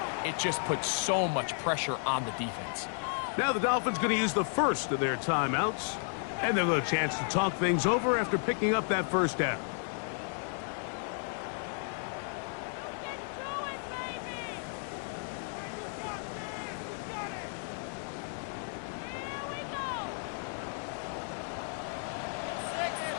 it just puts so much pressure on the defense. Now the Dolphins going to use the first of their timeouts, and they'll have a chance to talk things over after picking up that first down.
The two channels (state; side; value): silent; right; 56 dB below the other